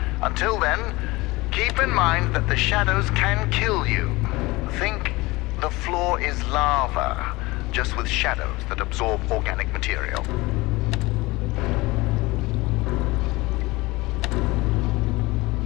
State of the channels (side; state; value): right; quieter; 21.7 dB